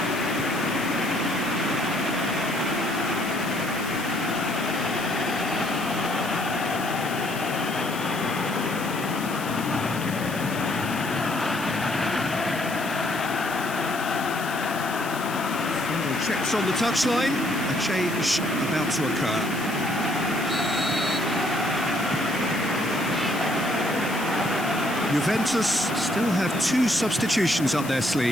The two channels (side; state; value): left; noise; hiss, 13 dB below the sound